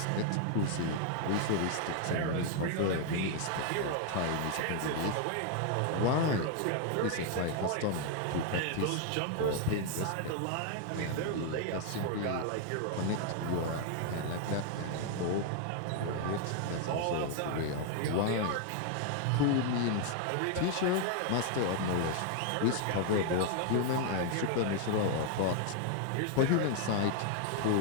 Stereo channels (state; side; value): different; both; correlation 0.00